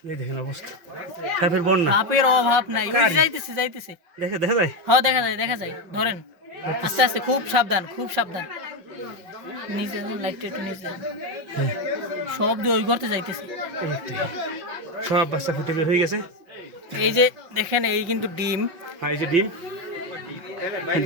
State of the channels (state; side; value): late; left; 5.6 ms